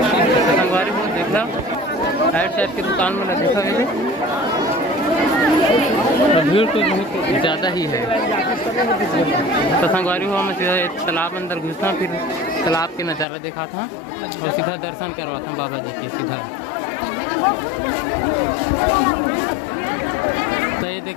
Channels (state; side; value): drops out; right; at 13.2 s